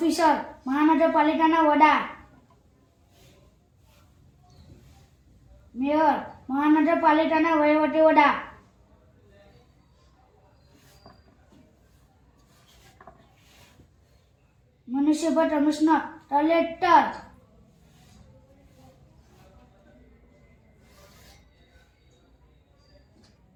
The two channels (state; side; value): identical; both; correlation 1.00